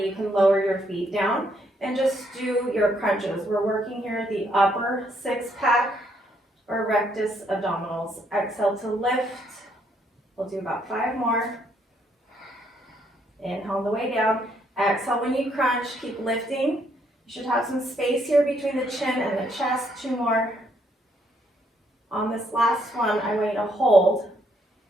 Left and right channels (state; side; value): normal; both; correlation 0.71